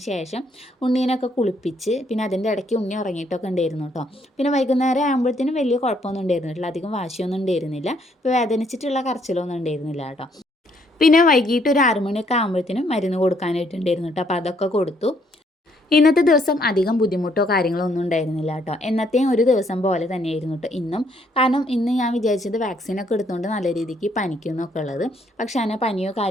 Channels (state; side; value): normal; both; correlation 0.69